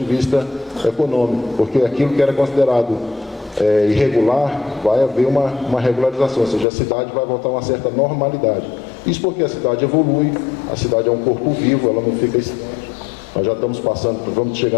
vista econômico, porque aquilo que era considerado irregular, vai haver uma regularização, ou seja, a cidade vai voltar a uma certa normalidade. Isso porque a cidade evolui, a cidade é um corpo vivo, ela não fica estante. Nós já estamos vamos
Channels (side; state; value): right; drops out; at 6.7 s